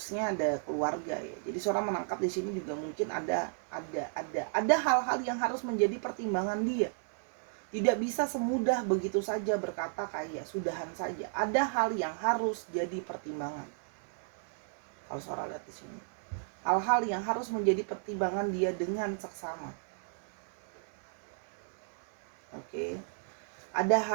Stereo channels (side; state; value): left; silent; digital silence